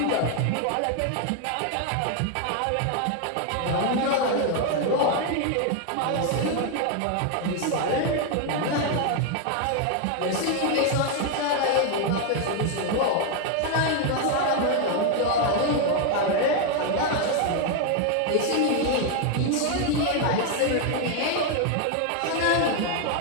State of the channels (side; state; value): both; different; correlation 0.01